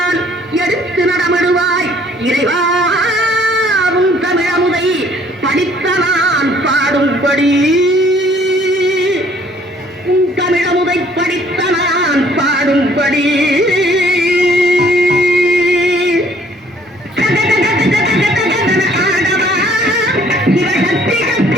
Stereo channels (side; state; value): both; normal; correlation 0.60